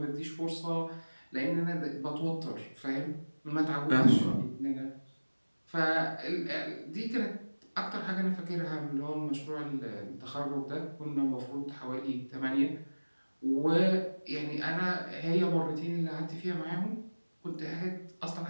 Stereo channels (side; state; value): both; inverted; correlation -1.00